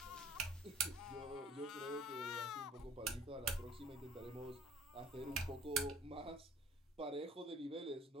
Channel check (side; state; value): both; normal; correlation 0.52